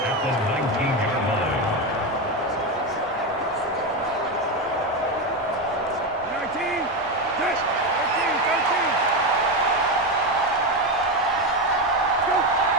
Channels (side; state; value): both; normal; correlation 0.13